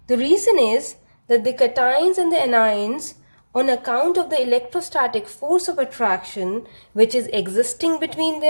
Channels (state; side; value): inverted; both; correlation -1.00